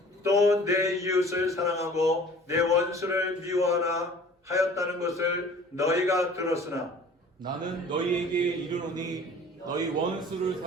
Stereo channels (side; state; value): both; normal; correlation 0.48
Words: 또 내 이웃을 사랑하고 내 원수를 미워하라 하였다는 것을 너희가 들었으나 나는 너희에게 이르노니 너희 원수를